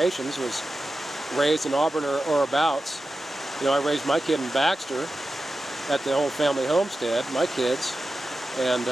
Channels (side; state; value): both; normal; correlation 0.92